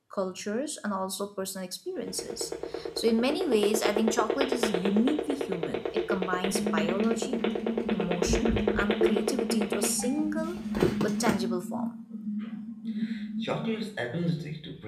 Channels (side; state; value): both; identical; correlation 1.00